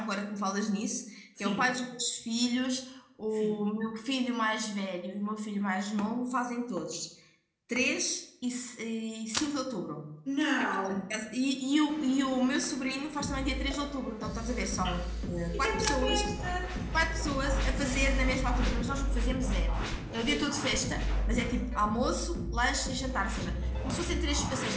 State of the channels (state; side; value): identical; both; correlation 1.00